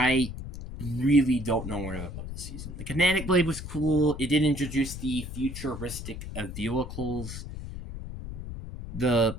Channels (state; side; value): noise; left; rumble, 9 dB below the sound